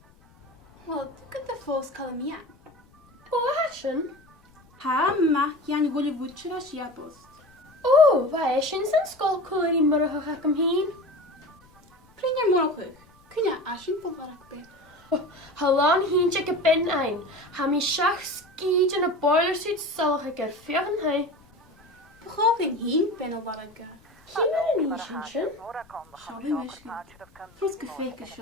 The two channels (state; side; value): noise; left; rumble, 29 dB below the sound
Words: Wel, gyda the ffos Colombian. O, hasyn? Ha, ma, yan gwylio fwtwyr a siabos. O, fa eisiau sy'n sgol cwr I myrwch ac am hyn. Prynia mwrwch, cynna asyn pob arach be. Halon hyn check y ben ein. Ha mi siach sgyd yn y boiler suit sylch ag erffio yn hai. Bwchof yn hyn ben o arach ga. Hyn ar yn eisiau sy'n? Siabi mysgu. Tros gyffeig y